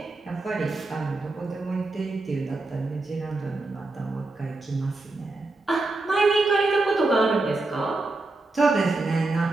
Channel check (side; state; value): left; quieter; 3.2 dB